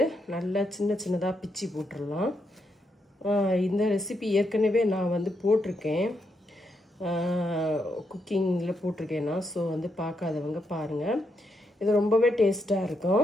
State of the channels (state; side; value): normal; both; correlation 0.81